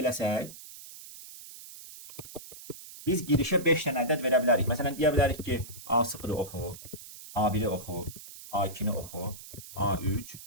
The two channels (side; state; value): right; noise; hiss, 15 dB below the sound